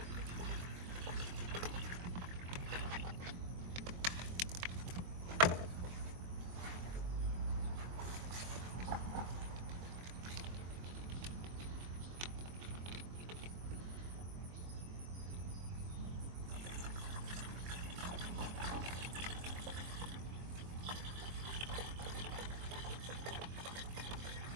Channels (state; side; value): late; left; 23 ms